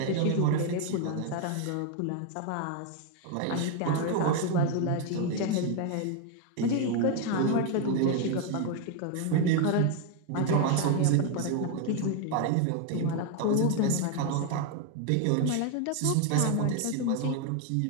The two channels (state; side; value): different; both; correlation 0.01